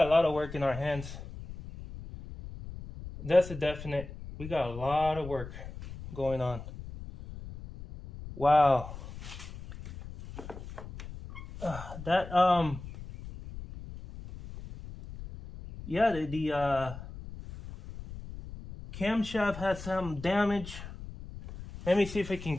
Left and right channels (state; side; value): noise; left; rumble, 12 dB below the sound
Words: lot of work in our hands. That's a definite. We got a lot of work going on. Wow. Yeah, the camshaft has some damage. Let me see if I can